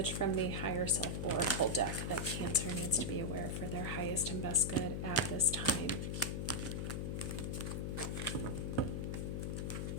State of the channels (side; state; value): left; noise; hum, 2 dB below the sound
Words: from the Higher Self Oracle deck that Cancer needs to be aware for their highest and best good at this time?